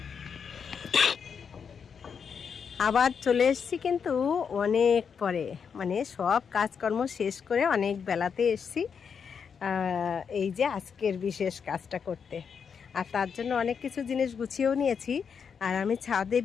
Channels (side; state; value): right; quieter; 6.6 dB